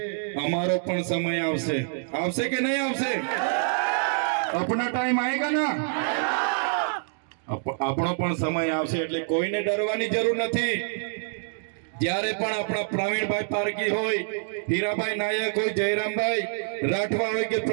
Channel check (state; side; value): silent; left; digital silence